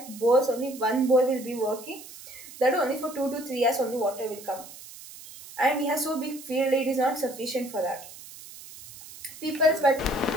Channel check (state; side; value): noise; right; hiss, 16 dB below the sound